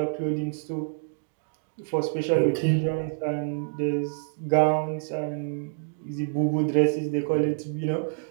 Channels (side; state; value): left; silent; digital silence